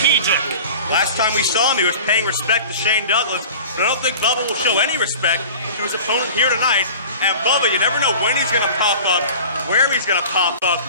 Last time we saw him, he was paying respect to Shane Douglas, but I don't think Bubba will show any respect to his opponent here tonight. And Bubba, you never know when he's going to pop up, where he's going to pop up,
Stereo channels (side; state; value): both; inverted; correlation -0.40